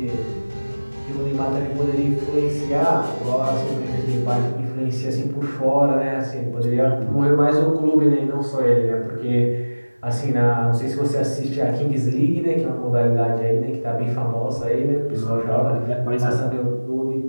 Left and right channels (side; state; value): both; inverted; correlation -1.00